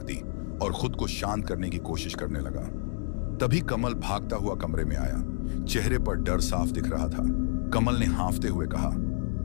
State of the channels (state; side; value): silent; right; digital silence